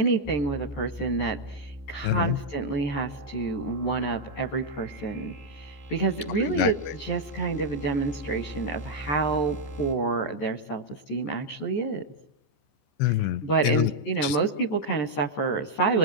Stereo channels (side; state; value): right; late; 14 ms